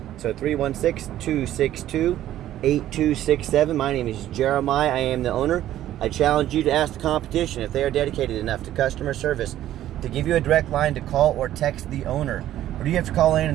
So 316-262-8267. My name is Jeremiah. I am the owner. I challenge you to ask the competition if they are dedicated enough to customer service to give you a direct line to call or text the owner. Or do you have to call in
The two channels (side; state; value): left; quieter; 12.8 dB